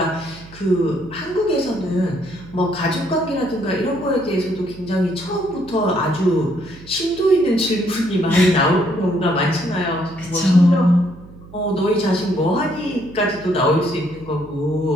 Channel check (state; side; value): noise; right; hum, 19 dB below the sound